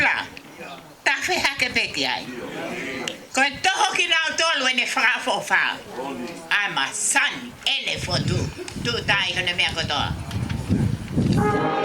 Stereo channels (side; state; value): both; identical; correlation 1.00